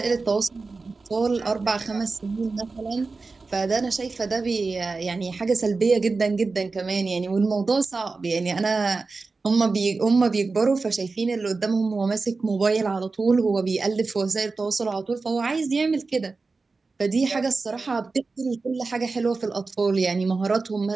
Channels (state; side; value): quieter; left; 4.0 dB